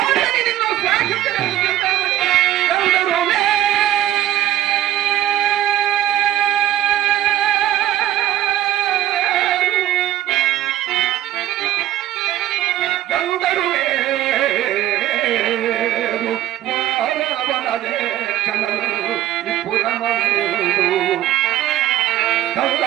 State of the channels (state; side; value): quieter; left; 13.1 dB